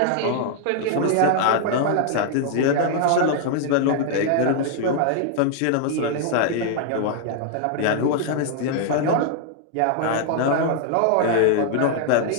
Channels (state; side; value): different; both; correlation 0.00